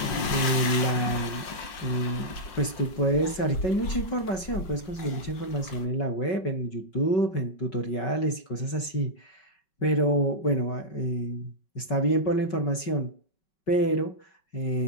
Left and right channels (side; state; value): right; late; 5.6 ms